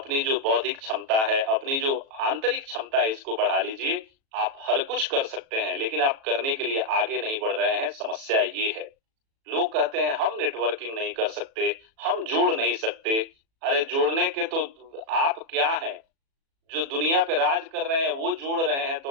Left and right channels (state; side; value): late; left; 36 ms